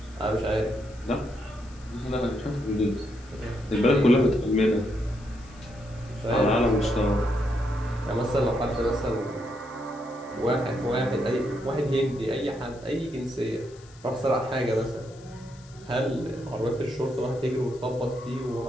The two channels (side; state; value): left; noise; hiss, 25 dB below the sound